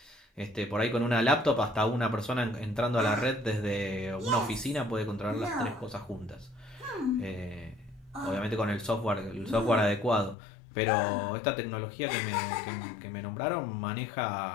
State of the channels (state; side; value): drops out; right; at 10.4 s